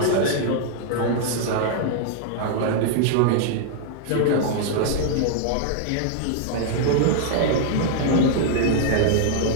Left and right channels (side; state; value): both; different; correlation 0.00